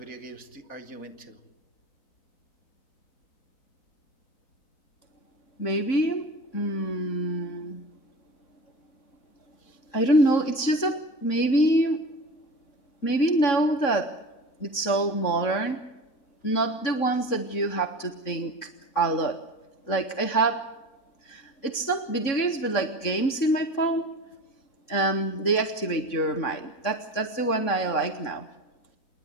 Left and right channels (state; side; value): late; right; 3.6 ms